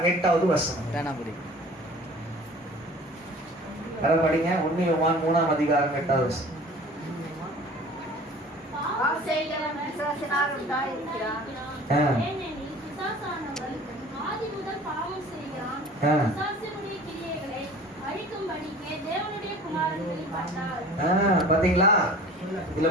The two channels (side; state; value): both; normal; correlation 0.45